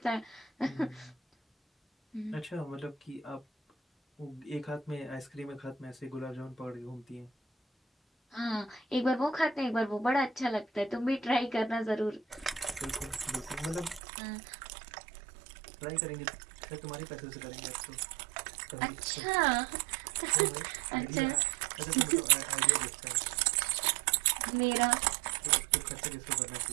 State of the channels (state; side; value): drops out; left; at 14.0 s